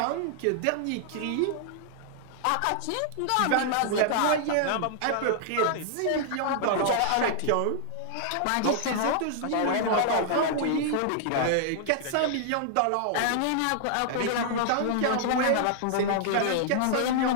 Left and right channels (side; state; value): both; different; correlation -0.01